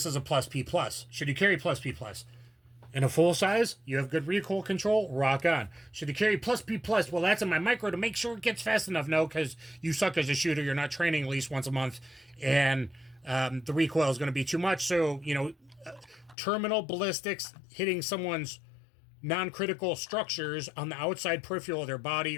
is a plus P plus. Should you carry plus P plus? In a full size, you have good recoil control, rock on. Should you carry plus P plus? Well, that's in my micro to make sure it gets fast enough. No, because you suck as a shooter. You're not training at least once a month, and the recoil is going to be too much. So, you know, terminal ballistics hitting someone's non-critical structures on the outside peripheral of their body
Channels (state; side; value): drops out; right; at 16.4 s